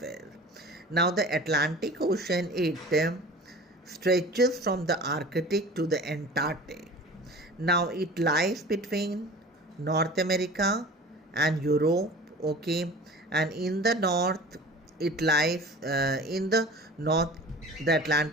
Now, the Atlantic Ocean, it stretches from the Arctic to the Antarctic. Now, it lies between North America and Europe, okay, and in the north, it lies in the north, the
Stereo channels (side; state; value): both; normal; correlation 0.40